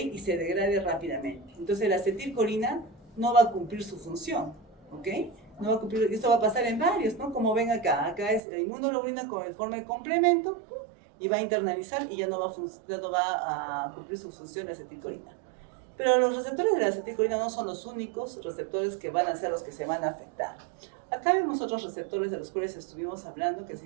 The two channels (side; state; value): left; drops out; at 8.4 s